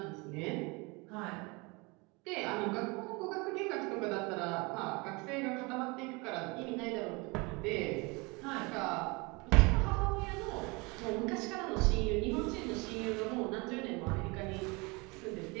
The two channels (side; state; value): left; quieter; 27.2 dB